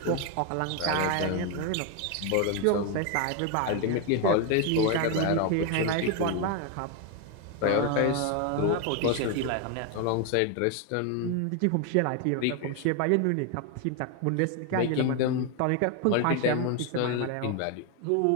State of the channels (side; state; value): both; different; correlation 0.01